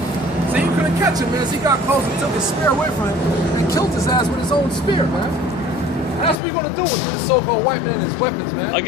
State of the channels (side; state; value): right; drops out; at 6.4 s